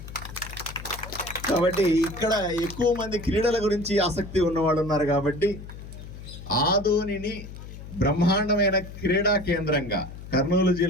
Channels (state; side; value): noise; left; hum, 13 dB below the sound